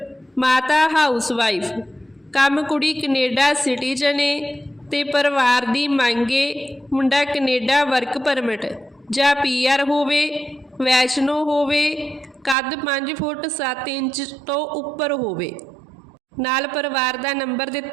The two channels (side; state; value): left; drops out; at 12.6 s